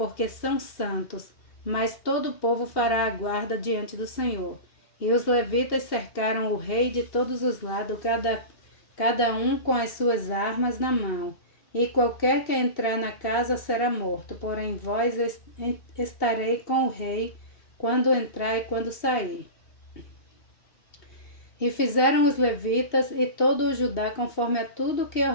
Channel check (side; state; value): right; late; 2.8 ms